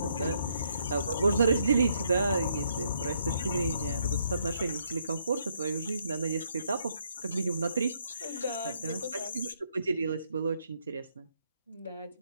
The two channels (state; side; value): inverted; both; correlation -0.72